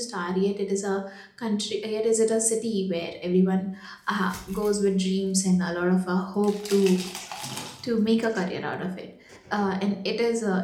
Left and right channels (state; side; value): identical; both; correlation 1.00